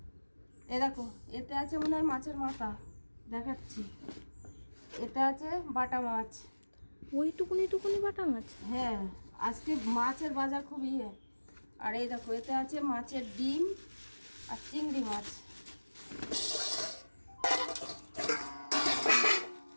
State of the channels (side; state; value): both; inverted; correlation -1.00